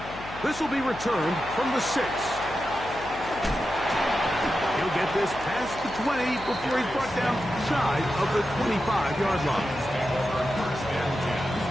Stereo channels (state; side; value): noise; left; hum, 14 dB below the sound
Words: This will be returned from the 6. He'll get this past the 20 before he's brought down shy of the 25-yard line.